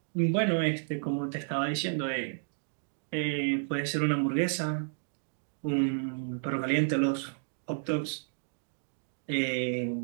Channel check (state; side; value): silent; left; digital silence